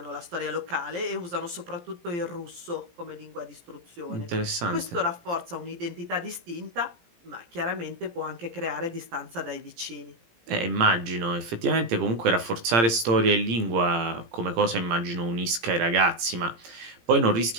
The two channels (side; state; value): left; late; 17 ms